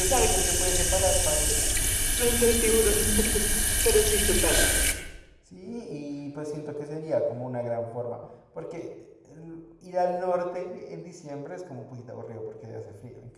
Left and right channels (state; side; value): identical; both; correlation 1.00